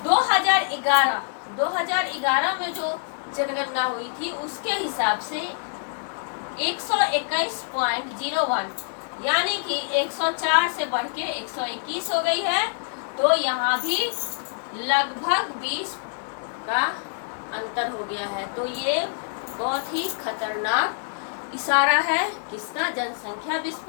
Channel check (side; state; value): right; silent; digital silence